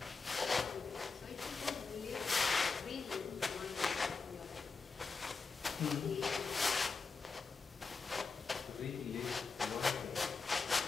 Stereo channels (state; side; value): quieter; right; 4.6 dB